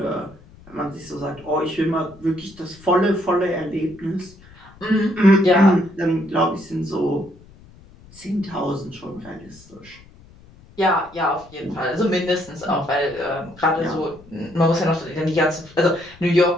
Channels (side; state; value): left; noise; rumble, 24 dB below the sound